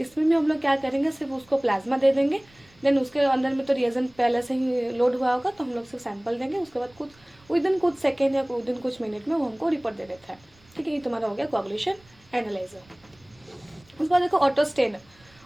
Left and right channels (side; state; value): right; noise; rumble, 30 dB below the sound